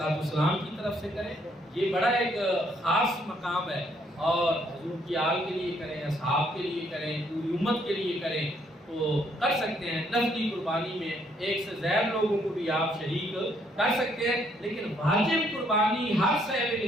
السلام کی طرف سے کریں۔ یہ بڑا ایک خاص مقام ہے، اور حضور کی آل کے لیے کریں، اصحاب کے لیے کریں، پوری امت کے لیے کریں تو کر سکتے ہیں۔ نفلی قربانی میں 1 سے زیادہ لوگوں کو بھی آپ شریک کر سکتے ہیں، لیکن واجب قربانی ہر صاحب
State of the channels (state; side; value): normal; both; correlation 0.69